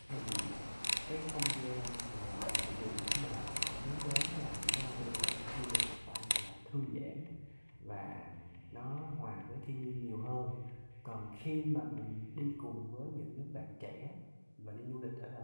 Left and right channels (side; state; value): both; inverted; correlation -1.00